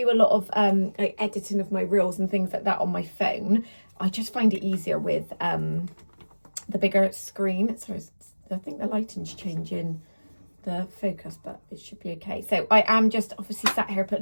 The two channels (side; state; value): both; inverted; correlation -1.00